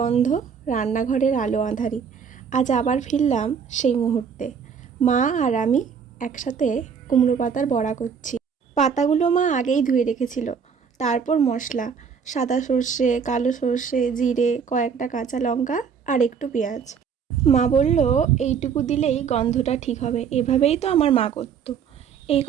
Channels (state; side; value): quieter; left; 6.7 dB